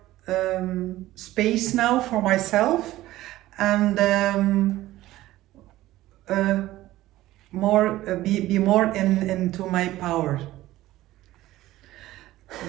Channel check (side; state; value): left; quieter; 15.9 dB